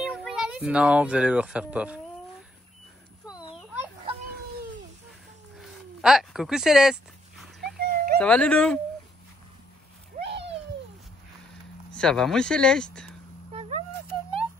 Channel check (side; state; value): both; normal; correlation 0.72